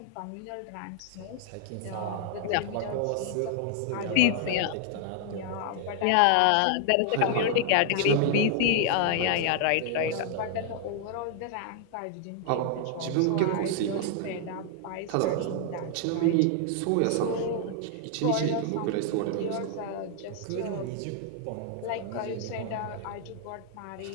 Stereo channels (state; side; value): different; both; correlation 0.00